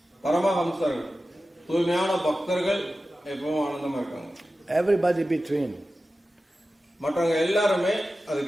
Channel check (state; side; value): normal; both; correlation 0.94